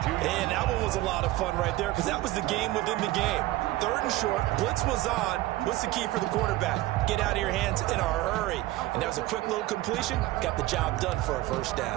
And that one was a lot of fun right there because that was the game within the game. 3rd and short, blitz was on. What's the key for the quarterback? Get out of your hands in a hurry. And that was a quick little completion. Got the job done for a first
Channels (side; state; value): left; quieter; 17.1 dB